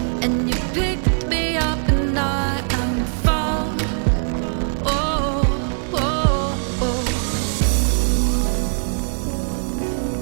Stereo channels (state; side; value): silent; left; digital silence